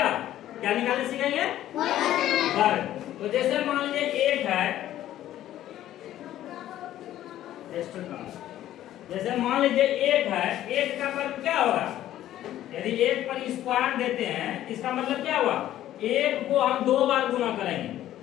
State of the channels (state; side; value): quieter; right; 12.9 dB